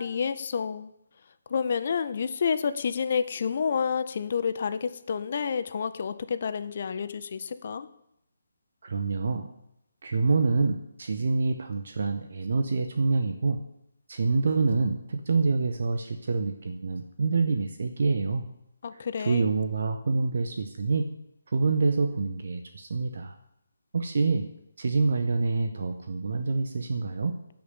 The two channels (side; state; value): both; inverted; correlation -0.86